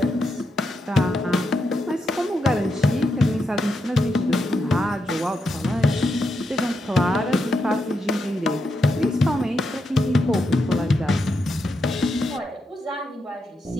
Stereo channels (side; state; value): both; normal; correlation 0.83